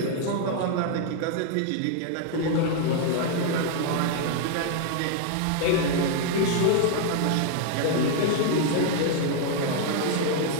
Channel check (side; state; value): both; different; correlation 0.00